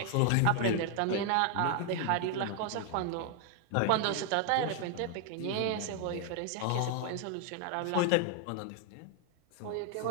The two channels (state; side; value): different; both; correlation 0.00